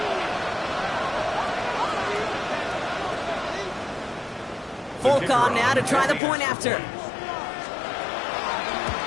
Folk on now to try the point after.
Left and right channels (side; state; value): right; drops out; at 6.2 s